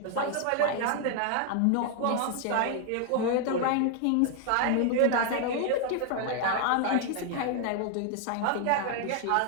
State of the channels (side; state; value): both; different; correlation 0.00